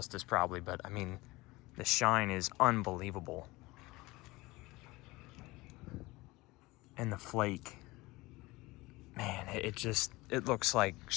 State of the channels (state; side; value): quieter; right; 21.3 dB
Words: probably, but I mean, the shine is unbelievable. And the flake, man, it looks like